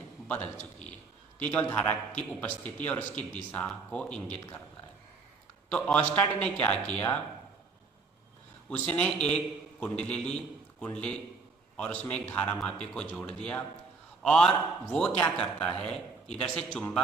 बदल चुकी है। तो ये केवल धारा की उपस्थिति और उसकी दिशा को इंगित करता है। तो ऑस्टार्ड ने क्या किया, उसने एक कुंडली ली, कुंडली और उसमें एक धारा मापी को जोड़ दिया, और वो क्या करता है, इधर से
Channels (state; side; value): quieter; left; 4.4 dB